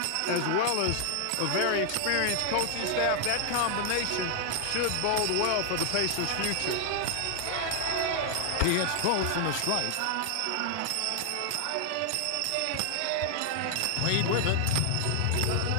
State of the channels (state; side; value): different; both; correlation 0.00